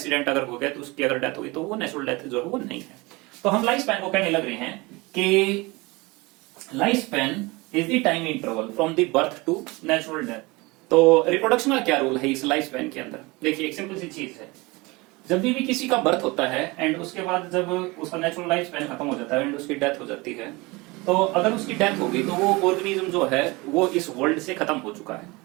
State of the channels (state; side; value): quieter; left; 24.1 dB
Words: अगर हो गया तो उसकी अगर डेथ हुई तो वो नेचुरल डेथ जो है वो नहीं है। तो हम लाइफ स्पैन को कहने लग रहे हैं कि life span is the time interval from the birth to natural death. तो रिप्रोडक्शन का क्या रोल है इस लाइफ स्पैन के अंदर? देखिए एक सिंपल सी चीज है, जब भी किसी का बर्थ होता है एंड उसके बाद जब उसका नेचुरल लाइफ स्पैन खत्म हो जाता है एंड उसकी डेथ हो जाती है, तो अगर उसकी डेथ होगी तो वो ऑर्गेनिज्म जो है वो इस वर्ल्ड से खत्म हो चुका है।